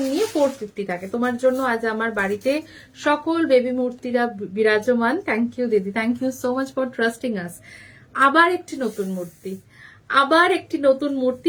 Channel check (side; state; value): both; identical; correlation 1.00